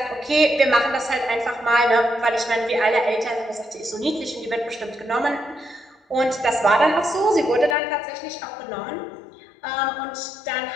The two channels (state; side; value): drops out; right; at 7.8 s